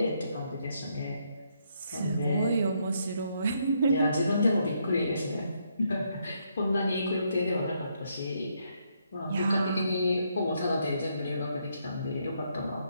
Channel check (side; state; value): both; inverted; correlation -0.75